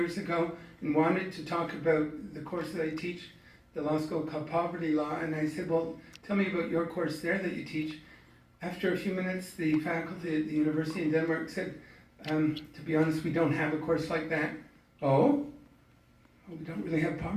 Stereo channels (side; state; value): both; identical; correlation 1.00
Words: ago, and wanted to talk about the course that I teach, the law school called Poverty Law, and I said, well, tell me about your course there that you teach. After a few minutes, the faculty at the university in Denmark said, to be honest, we don't have a course like that. Oh? Well, we don't really have